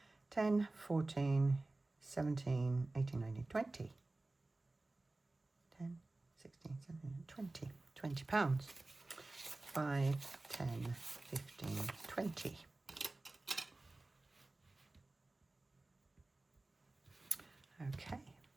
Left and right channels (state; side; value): quieter; left; 3.0 dB